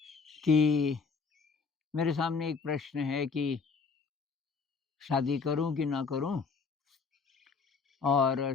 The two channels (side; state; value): right; quieter; 5.0 dB